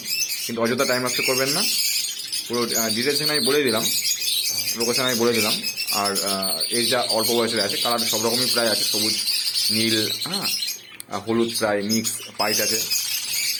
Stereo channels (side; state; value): both; identical; correlation 1.00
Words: কিন্তু অযথা টাইম নষ্ট করবেন না। পুরো ডিটেলস আমি বলে দিলাম, লোকেশন আমি বলে দিলাম। আর এই যা অল্প বয়সের আছে, কালার সব রকমই প্রায় আছে, সবুজ, নীল, হ্যাঁ, হলুদ প্রায় মিক্স, পাইট আছে।